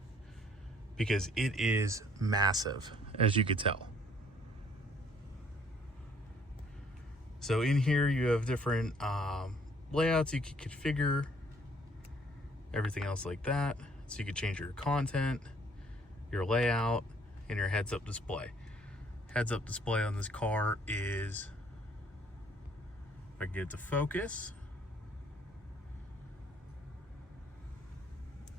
because it is massive, as you could tell. So in here you have different layouts you can configure, everything else like that. So you can change your content, your layout, and your heads-up display. Heads-up display on this car is, if I can get it to focus,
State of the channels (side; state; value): both; normal; correlation 0.62